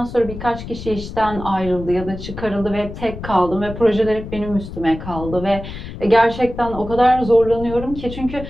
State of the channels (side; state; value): left; noise; rumble, 10 dB below the sound